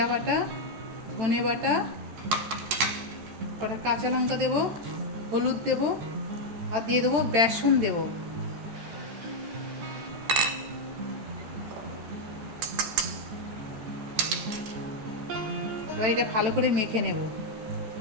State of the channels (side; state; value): left; late; 13 ms